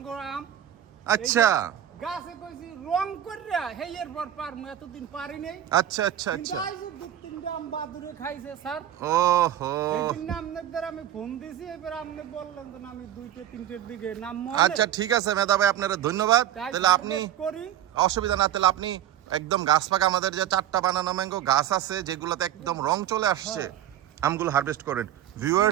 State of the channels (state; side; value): quieter; left; 11.1 dB